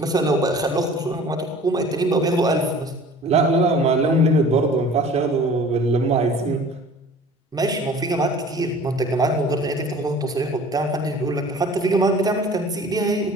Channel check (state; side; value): normal; both; correlation 0.46